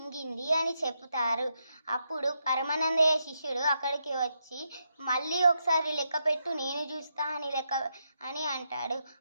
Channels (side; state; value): both; inverted; correlation -0.82